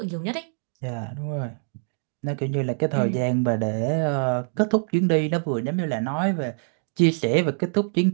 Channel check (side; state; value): left; silent; digital silence